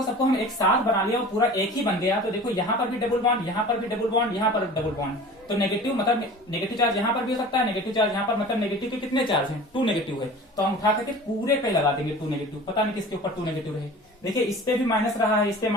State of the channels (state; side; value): normal; both; correlation 0.40